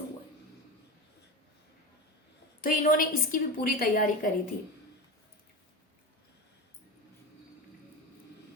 हुआ है। तो इन्होंने इसकी भी पूरी तैयारी करी थी।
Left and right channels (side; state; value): both; normal; correlation 0.24